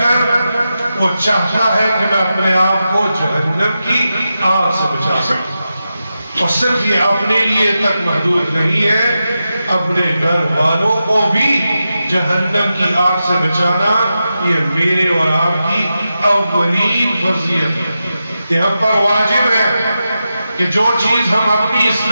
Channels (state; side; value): inverted; both; correlation -0.90